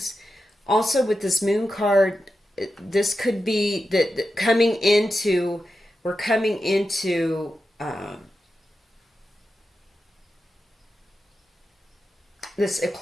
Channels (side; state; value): both; normal; correlation 0.90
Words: Also, with this moon card, this could be that we're coming into this